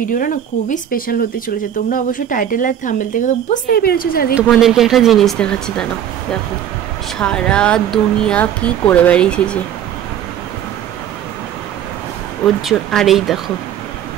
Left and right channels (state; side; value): quieter; left; 10.0 dB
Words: না খুবই স্পেশাল হতে চলেছে। তোমরা অবশ্যই টাইটেল আর থাম্বনেল থেকে তো বুঝতেই পেরেছো যে আজকে তোমাদেরকে একটা জিনিস দেখাচ্ছি, দাঁড়াও। দেখো সারা দুনিয়া কি করে বেরিয়েছে ওর জন্য। আর এই দেখো